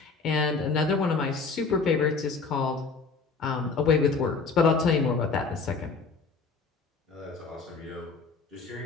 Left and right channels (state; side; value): quieter; right; 4.5 dB